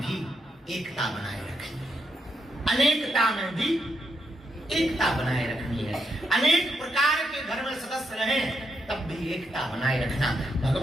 भी एकता बनाए रखनी है, अनेकता में भी एकता बनाए रखनी है। अनेक प्रकार के घर में सदस्य रहें तब भी एकता बनाए रखना,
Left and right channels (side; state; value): both; normal; correlation 0.81